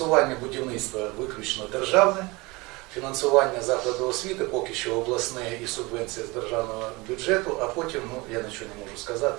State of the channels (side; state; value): left; quieter; 24.2 dB